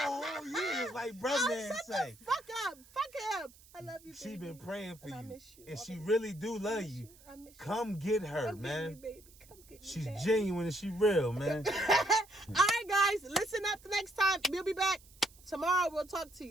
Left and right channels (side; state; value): right; noise; hiss, 24 dB below the sound